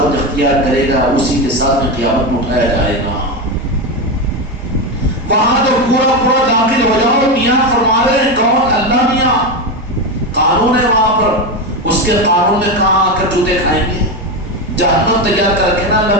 اختیار کرے گا اسی کے ساتھ میں قیامت میں اٹھایا جائے گا. وہاں تو پورا داخل ہو جاؤ. میاں فرما رہے ہیں کون؟ اللہ میاں. قانون ہے وہاں پر، اس کے قانون میں کہاں آ کر جوتے کھائیں گے؟ جہنم تیار کر کے نا اللہ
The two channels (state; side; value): normal; both; correlation 0.14